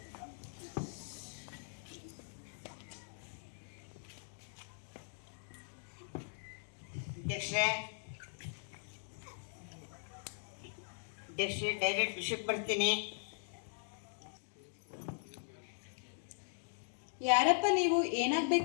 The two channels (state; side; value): silent; right; digital silence